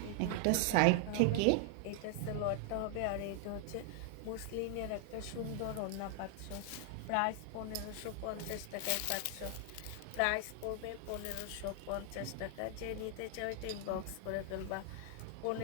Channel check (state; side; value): different; both; correlation 0.00